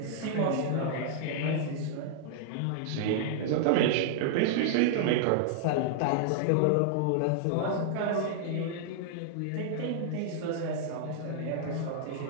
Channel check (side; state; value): both; different; correlation -0.01